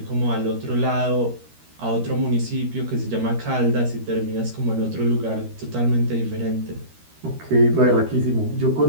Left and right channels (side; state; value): left; late; 13 ms